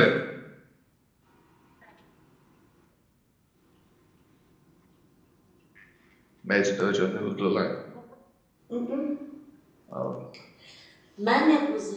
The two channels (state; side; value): identical; both; correlation 1.00